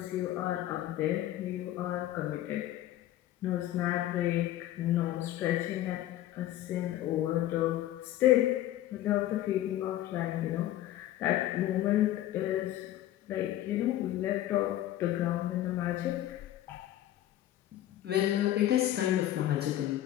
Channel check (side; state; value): right; quieter; 13.6 dB